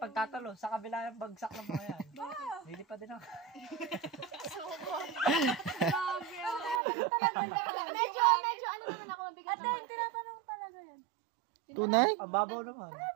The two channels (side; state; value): left; drops out; at 6.8 s